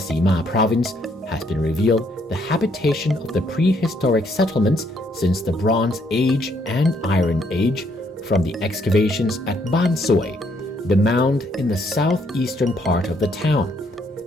Province, has been revealed the habitation of the prehistoric settlements since the Bronze Age and Iron Age from the excavations at Bansoi, the mound in the southeastern part of the town.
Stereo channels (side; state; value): both; normal; correlation 0.70